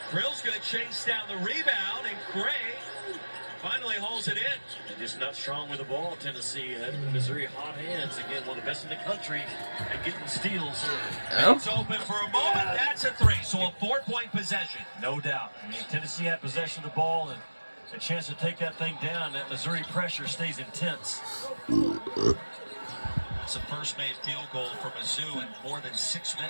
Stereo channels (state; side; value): inverted; both; correlation -1.00